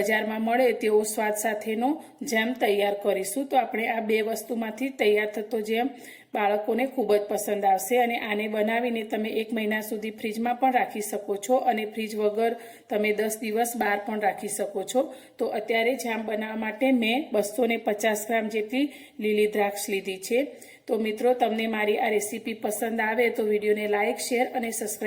में मळे तेवो स्वाद साथेनो जेम तैयार करीशुं। तो आपणे आ बे वस्तुमांथी तैयार थतो जेम बाळकोने खूब ज पसंद आवशे अने आने बनावीने तमे 1 महीना सुधी फ्रीज में पण राखी शको छो अने फ्रीज वगर तमे 10 दिवस बहार पण राखी शको छो। तो अत्यारे जाम बनाववा माटे मैं 250 ग्राम जेटली लीली द्राक्ष लीधी छे। तो मित्रों, तमने मारी आ रेसिपी पसंद आवे तो विडियो ने लाइक, शेर और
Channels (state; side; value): identical; both; correlation 1.00